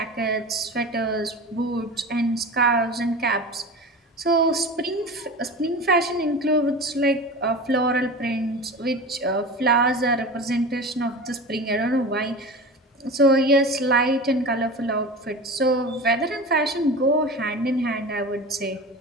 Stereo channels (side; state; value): both; normal; correlation 0.31